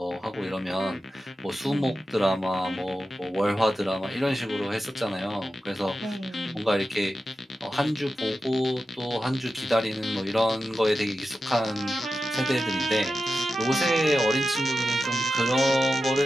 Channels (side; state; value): both; normal; correlation 0.91